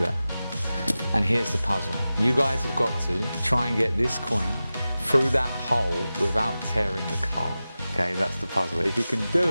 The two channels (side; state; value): both; inverted; correlation -0.95